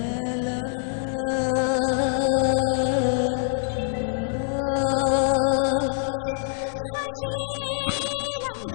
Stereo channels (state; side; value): silent; right; digital silence